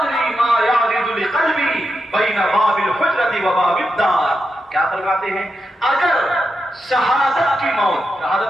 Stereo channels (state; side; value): normal; both; correlation 0.87